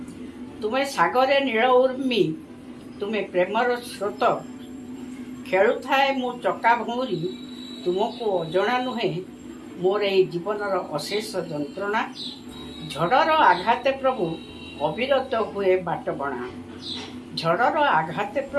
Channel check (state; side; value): identical; both; correlation 1.00